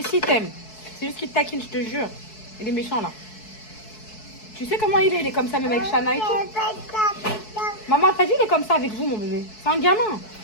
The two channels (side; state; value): right; late; 4.6 ms